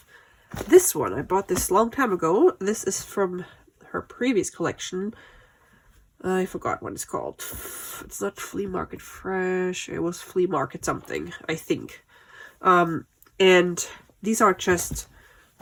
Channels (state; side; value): identical; both; correlation 1.00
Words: this one. I bought this a long time ago. This is from her previous collection. I forgot what it's called. It's not Flea Market Fresh. It was Flea Market something, I think. And these are just